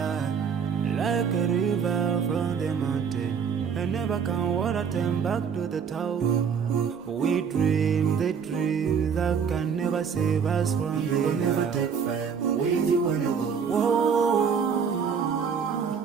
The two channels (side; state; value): left; quieter; 6.7 dB